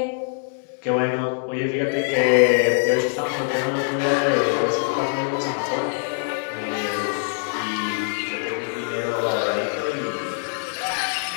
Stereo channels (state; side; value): silent; right; digital silence